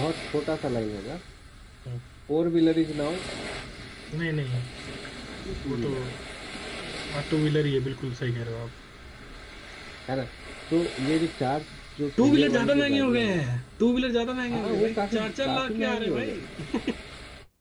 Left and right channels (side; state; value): both; identical; correlation 1.00